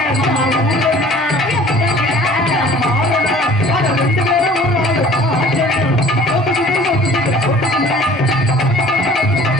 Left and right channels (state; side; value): normal; both; correlation 0.49